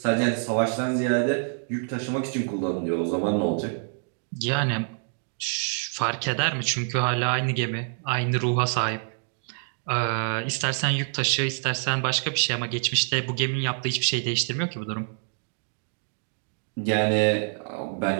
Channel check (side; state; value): left; silent; digital silence